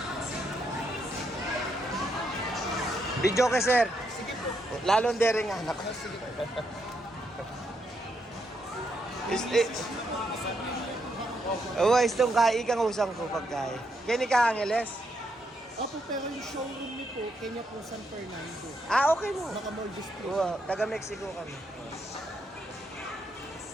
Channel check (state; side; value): normal; both; correlation 0.78